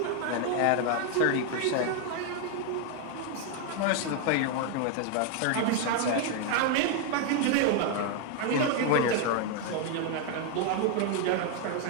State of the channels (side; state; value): both; different; correlation 0.00